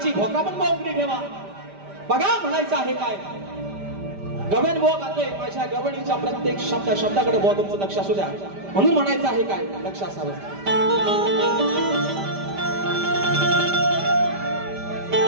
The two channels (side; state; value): left; late; 5.1 ms